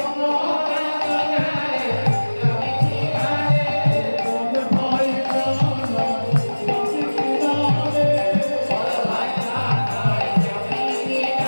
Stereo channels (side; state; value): both; inverted; correlation -1.00